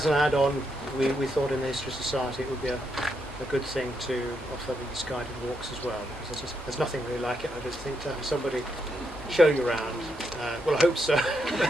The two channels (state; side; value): normal; both; correlation 0.80